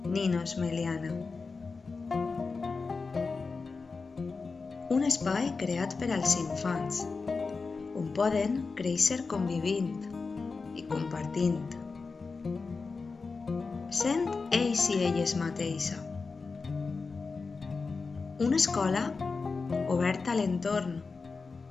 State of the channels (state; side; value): quieter; right; 4.4 dB